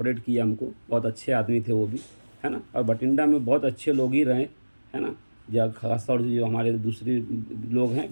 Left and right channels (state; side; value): inverted; both; correlation -1.00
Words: کیے ہم کو، بہت اچھے آدمی تھے وہ بھی، ہے نا، اور بٹنڈا میں بہت اچھے لوگ ہی رہے، ہے نا، خاص طور سے جو ہمارے دوسرے لوگ ہیں